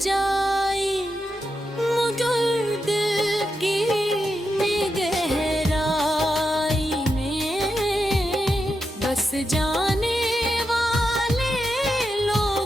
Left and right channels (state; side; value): normal; both; correlation 0.87